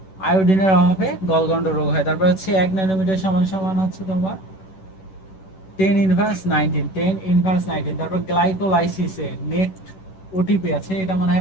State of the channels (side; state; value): right; late; 11 ms